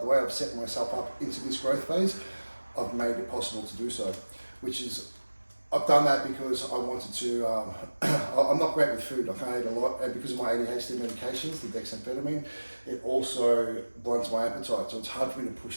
way I've set myself up into this growth phase, I've made it possible to do so, which is, I've done that because I wanted to, I'm not great with food, I can't eat a lot, and because of my ADHD medications, the dexamphetamine, it also blunts my appetite, so it's hard for me to push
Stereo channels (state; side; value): inverted; both; correlation -1.00